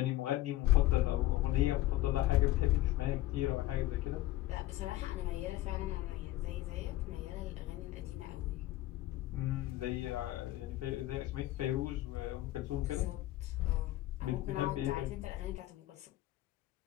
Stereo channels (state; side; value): quieter; right; 16.0 dB